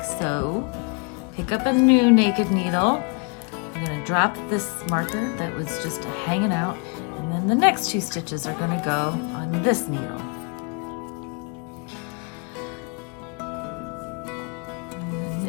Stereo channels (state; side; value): quieter; right; 34.7 dB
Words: so. Pick up a new naked needle. I'm going to drop this marker that was just hanging out, and then the next 2 stitches are going to go on this needle.